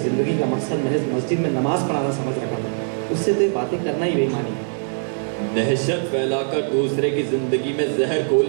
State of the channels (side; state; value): left; silent; digital silence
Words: जिंदगी का मकसद महज मस्जिद में नमाज पढ़ाना समझ रखा था, उससे तो ये बातें करना ही बेईमानी है। दहशत फैलाकर दूसरे की जिंदगी में जहर